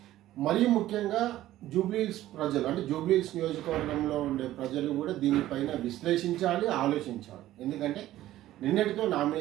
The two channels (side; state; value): left; quieter; 14.4 dB